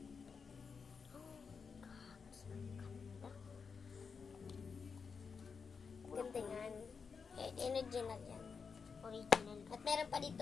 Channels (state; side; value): quieter; right; 5.6 dB